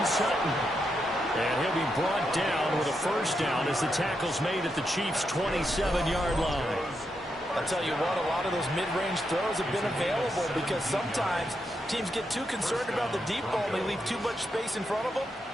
Sutton. And he'll be brought down with a first down as the tackle's made at the Chiefs' 27-yard line. I'll tell you what, a lot of those mid-range throws have been available because sometimes teams get too concerned about the deep ball and they leave too much space in front of them.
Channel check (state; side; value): normal; both; correlation 0.83